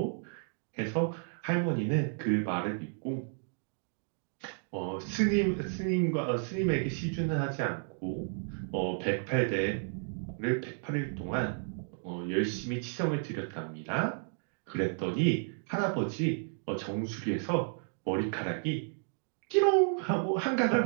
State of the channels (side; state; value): left; silent; 56 dB below the other